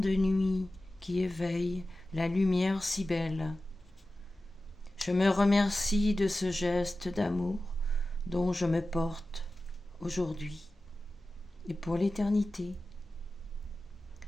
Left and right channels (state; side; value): normal; both; correlation 0.94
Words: nuit qui éveille la lumière si belle. Je me remercie de ce geste d'amour dont je me porte aujourd'hui et pour l'éternité.